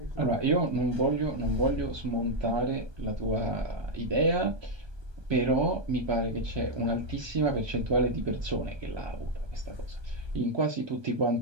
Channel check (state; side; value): late; left; 1.2 ms